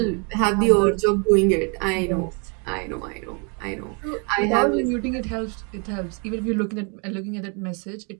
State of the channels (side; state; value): left; quieter; 35.7 dB